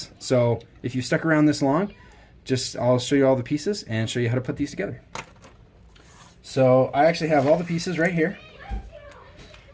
So if you stuck around this long, I'll show you all the pieces and show you how to put these together. So I actually have all the pieces right here.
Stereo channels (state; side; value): identical; both; correlation 1.00